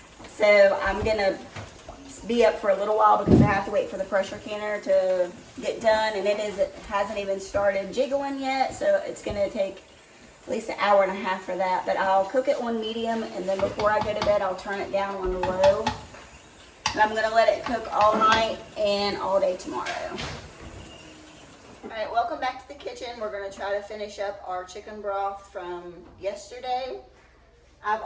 So I'm going to be up for a little while because I have to wait for the pressure canner to get done, and it hasn't even started jiggling yet, so it's going to take at least an hour and a half for that. But I'll cook it on medium, and then before I go to bed I'll turn it down on low, and I'm going to let it cook all night and all day tomorrow. Alright, welcome back to the kitchen. We're going to try to finish up our chicken broth from yesterday. I've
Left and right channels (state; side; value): identical; both; correlation 1.00